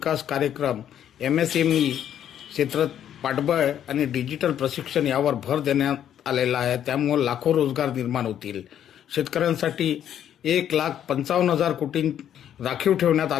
कार्यक्रम, MSME क्षेत्रात पाठबळ आणि डिजिटल प्रशिक्षण यावर भर देण्यात आलेला आहे. त्यामुळे लाखो रोजगार निर्माण होतील. शेतकऱ्यांसाठी 1,55,000 कोटी राखीव ठेवण्यात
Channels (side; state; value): right; quieter; 10.1 dB